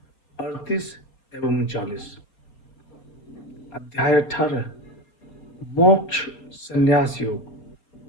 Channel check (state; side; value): late; right; 4.2 ms